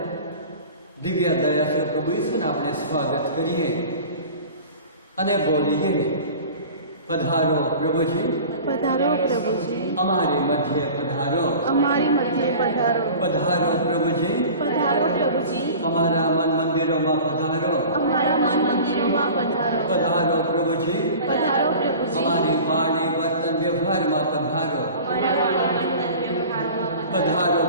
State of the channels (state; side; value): inverted; both; correlation -0.39